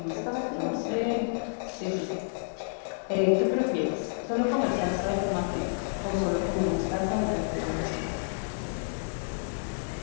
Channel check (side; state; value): right; silent; digital silence